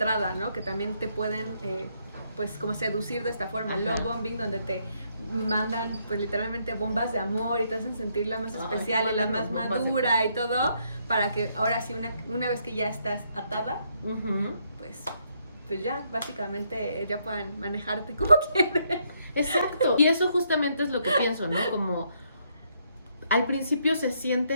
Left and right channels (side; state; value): both; inverted; correlation -0.73